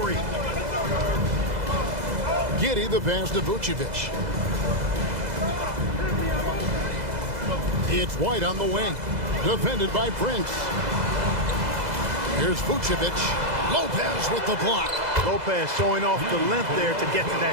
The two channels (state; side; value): late; left; 2.0 ms